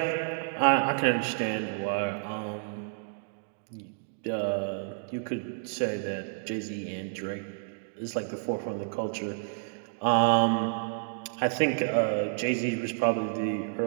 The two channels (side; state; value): left; silent; digital silence